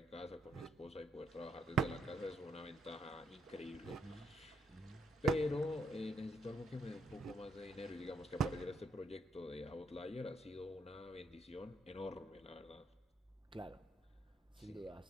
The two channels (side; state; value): both; normal; correlation 0.76